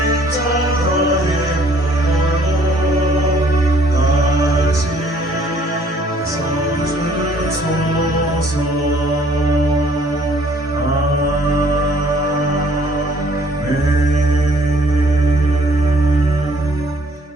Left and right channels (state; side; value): normal; both; correlation 0.60